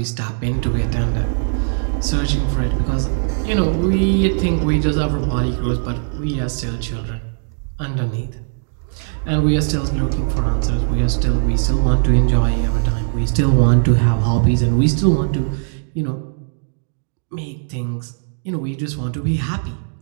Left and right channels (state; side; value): silent; left; digital silence